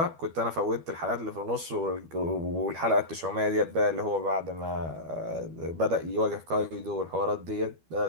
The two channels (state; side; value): late; left; 12 ms